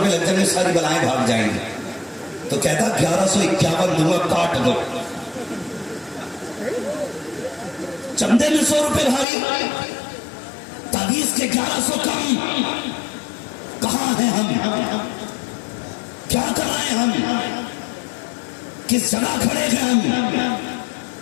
لگ جائیں گے، ساری بلائیں بھاگ جائیں گی. تو کہتا 1151 دوں گا، کاٹ دو. چندے میں 100 روپے بھاری، تعویذ کے 1100 کم. کہاں ہیں ہم؟ کیا کر رہے ہیں ہم؟ کس جگہ کھڑے ہیں ہم؟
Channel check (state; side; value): drops out; right; at 9.2 s